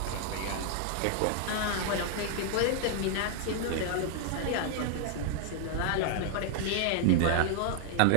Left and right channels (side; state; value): both; different; correlation 0.00